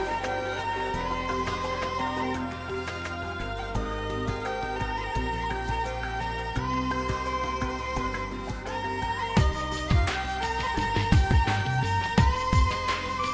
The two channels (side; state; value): both; identical; correlation 1.00